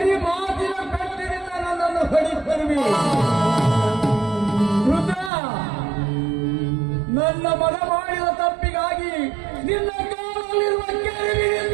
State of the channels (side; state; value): left; drops out; at 5.3 s